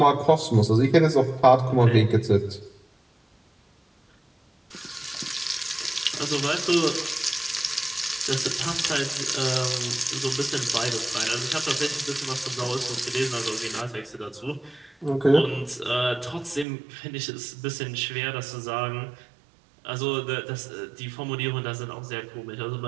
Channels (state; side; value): drops out; left; at 16.7 s